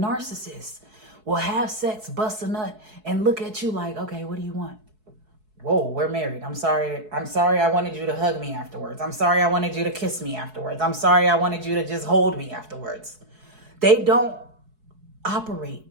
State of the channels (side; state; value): left; late; 4.7 ms